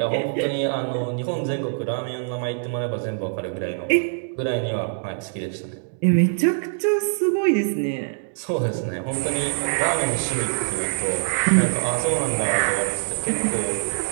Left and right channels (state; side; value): silent; left; digital silence